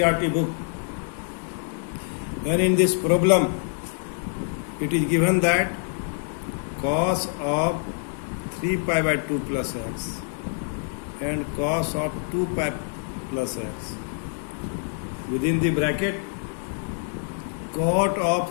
book. And in this problem, it is given that cos of 3 pi by 2 plus x and cos of 2 pi plus x within the bracket cot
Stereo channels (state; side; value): silent; right; 61 dB below the other